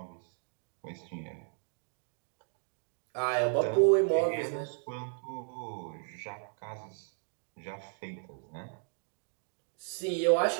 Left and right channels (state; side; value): silent; left; 55 dB below the other